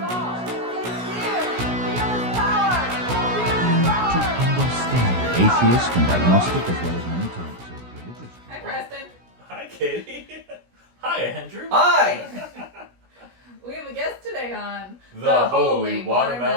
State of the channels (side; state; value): left; late; 16 ms